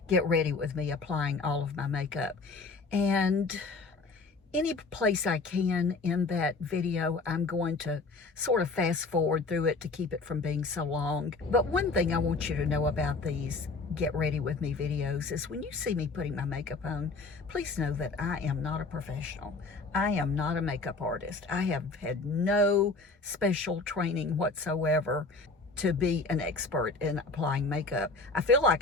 Get Ready With Me, applying all of my makeup. And any place I can in that video, I'm going to sort of fast forward through it to keep it from being so long. But one thing I want you to know about these Get Ready With Me videos is, when you see me putting my makeup on, please know that I am not a professional. I am not a makeup artist. I have had no special training whatsoever to be an expert in applying makeup. I feel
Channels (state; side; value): quieter; right; 3.8 dB